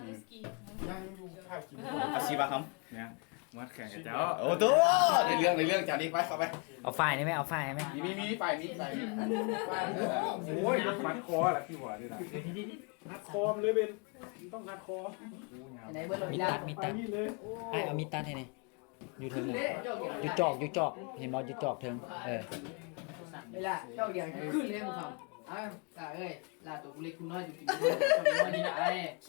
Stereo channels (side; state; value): right; quieter; 34.3 dB